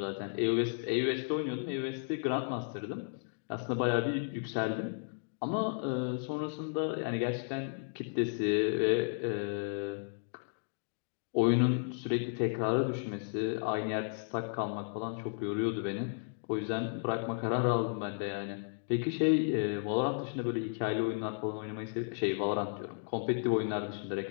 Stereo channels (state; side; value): silent; right; digital silence